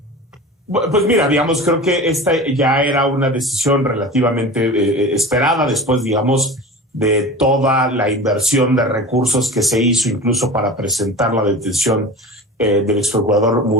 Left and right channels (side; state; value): both; normal; correlation 0.34